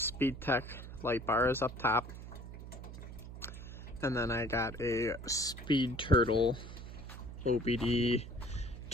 light bar is up top, and then I got a SpeedTurtle OBD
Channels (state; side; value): noise; right; hum, 11 dB below the sound